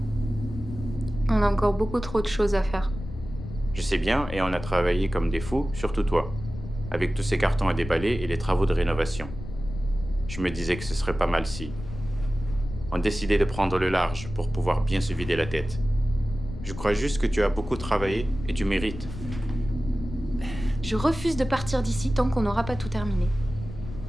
On a encore beaucoup trop de choses à faire. Je sais bien, et on a travaillé comme des fous, surtout toi, avec tous ces cartons à déballer et les travaux de rénovation. Je me disais que ce serait pas mal si on décidait de prendre le large pour pouvoir bien se vider la tête. Je crois juste que tu as beaucoup travaillé et tu mérites. Je refuse de partir d'ici tant qu'on n'aura pas tout terminé.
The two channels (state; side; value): noise; left; rumble, 11 dB below the sound